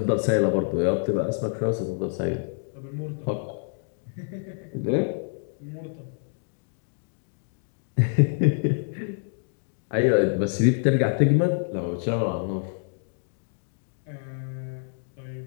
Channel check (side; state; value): right; silent; digital silence